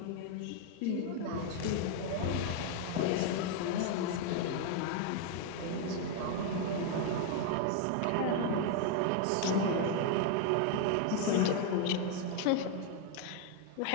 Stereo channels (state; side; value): different; both; correlation 0.01